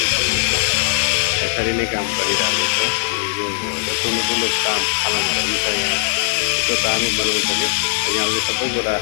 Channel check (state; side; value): silent; right; 66 dB below the other